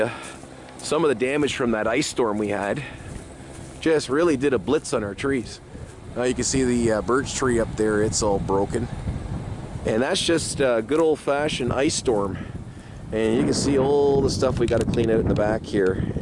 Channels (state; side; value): identical; both; correlation 1.00